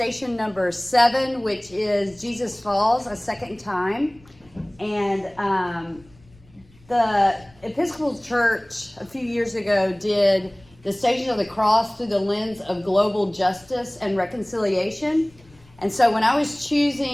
number 7, which is Jesus Falls, a second time, and the Episcopal Church a few years ago did the Station of the Cross through the lens of global justice and reconciliation. And so when I was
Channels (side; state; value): left; noise; rumble, 27 dB below the sound